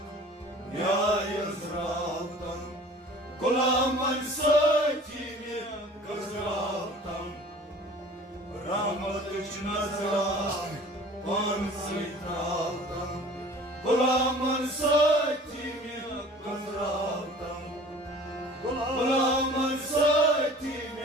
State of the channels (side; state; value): both; normal; correlation 0.45